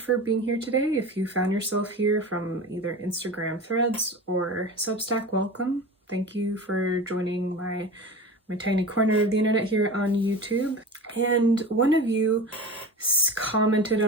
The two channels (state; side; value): normal; both; correlation 0.31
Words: for being here today. If you found yourself here from either Instagram threads or Substack, welcome. Thank you for joining my tiny corner of the internet here on YouTube. And one of you commented